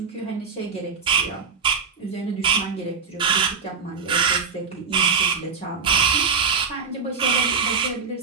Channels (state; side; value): quieter; left; 5.5 dB